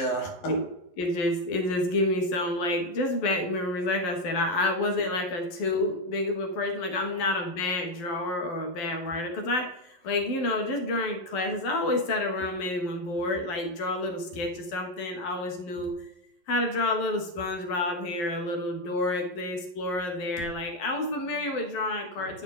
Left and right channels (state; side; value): late; right; 11 ms